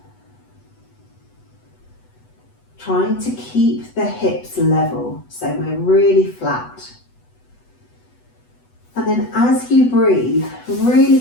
Trying to keep the hips level, so we're really flat. And then as you breathe, really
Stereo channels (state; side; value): late; right; 8.1 ms